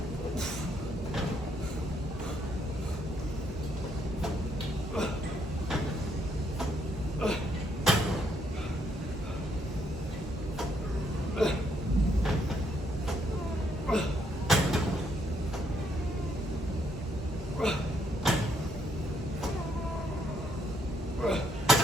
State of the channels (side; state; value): both; normal; correlation 0.73